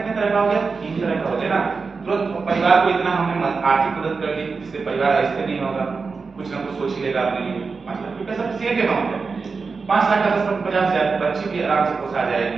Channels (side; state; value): left; quieter; 4.7 dB